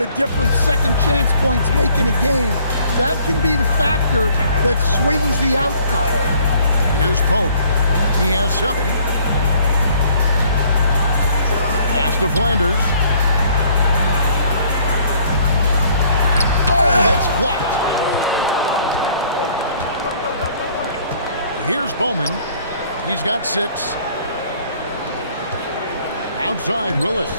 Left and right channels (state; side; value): inverted; both; correlation -0.59